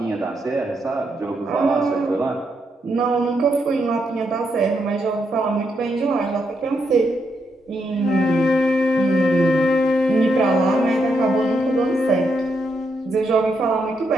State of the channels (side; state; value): both; normal; correlation 0.80